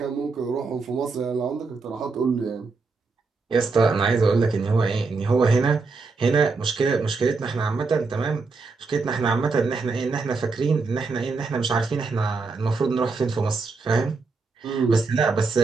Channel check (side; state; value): left; quieter; 4.2 dB